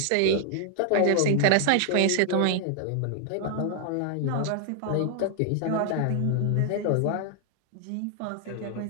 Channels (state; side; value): different; both; correlation 0.00